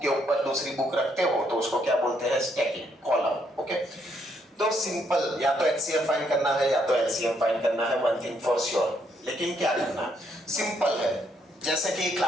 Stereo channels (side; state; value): both; normal; correlation 0.73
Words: के ऊपर दूसरी बुक रखते हो तो उसको क्या बोलते हैं, स्टैकिंग, कॉलम। ओके, तो सिंपल, या तो एचसीएफ फाइंड करना है या तो एलसीएम फाइंड करना है, वन थिंग फॉर श्योर। लेकिन क्या करना है, सिंपल है। जैसे कि